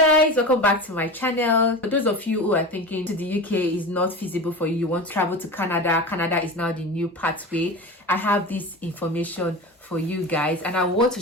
guys, welcome back to my channel. For those of you who are thinking to the UK is not feasible for you, you want to travel to Canada is now the new pathway. I have this information for you guys and I want to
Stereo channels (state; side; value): normal; both; correlation 0.29